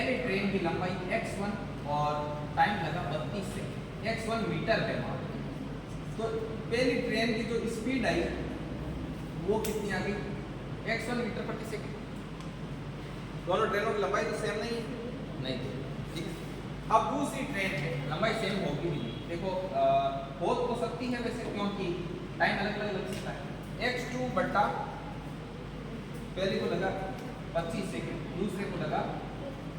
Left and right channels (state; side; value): identical; both; correlation 1.00